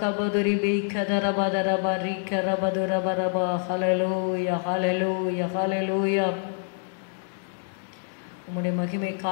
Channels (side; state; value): right; silent; 61 dB below the other